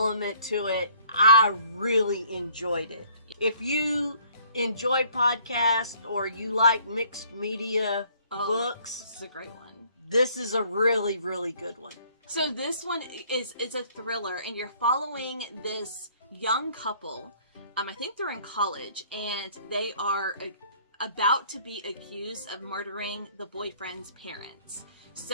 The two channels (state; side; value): inverted; both; correlation -0.59